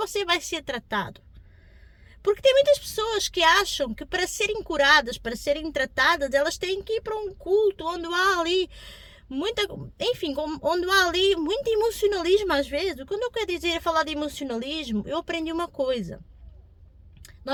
vai ser tratado? Porque tem muitas pessoas que acham que para serem curadas, para serem tratadas, elas têm que ir para um culto onde há ali onde há ali muito emocionalismo às vezes. Quando eu quero falar de emocionalismo, eu aprendi uma coisa.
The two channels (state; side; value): identical; both; correlation 1.00